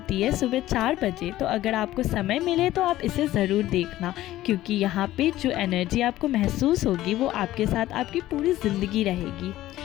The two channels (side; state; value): right; quieter; 15.0 dB